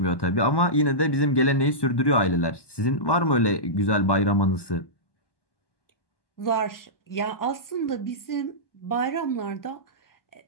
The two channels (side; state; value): right; late; 1.1 ms